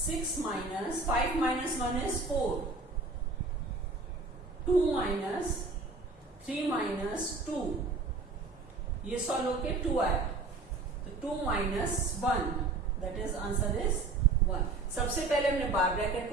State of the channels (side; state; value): left; quieter; 3.6 dB